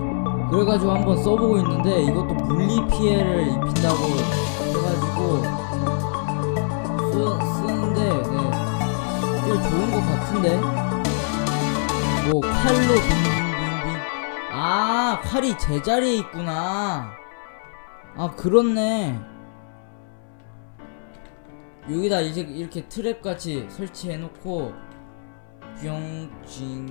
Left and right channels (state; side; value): silent; right; 62 dB below the other